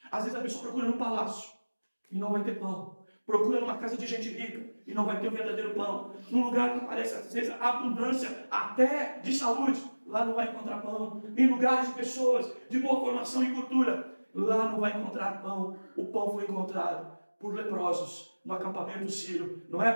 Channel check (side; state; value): both; inverted; correlation -1.00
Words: Às vezes a pessoa procura no palácio e não vai ter pão. Procura numa casa de gente rica e não vai ter o verdadeiro pão. Num lugar que parece, às vezes, abundância até de saúde, lá não vai encontrar pão. Em lugares de pessoas de boa formação e cultura, lá não vai encontrar pão. O pão foi encontrado por leprosos no acampamento sírio, não